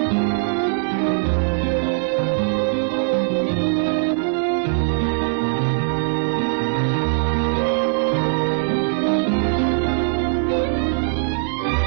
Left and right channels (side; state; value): left; silent; 64 dB below the other